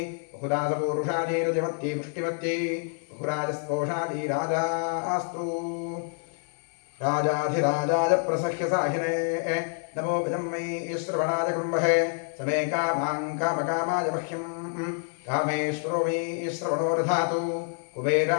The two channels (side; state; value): right; silent; 60 dB below the other